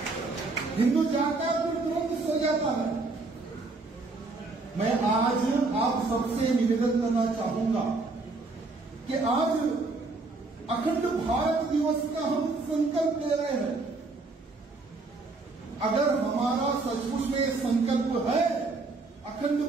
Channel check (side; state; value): left; quieter; 3.6 dB